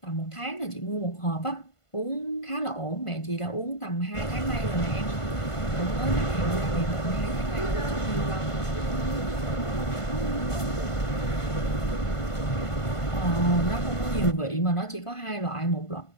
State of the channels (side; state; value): right; late; 1.5 ms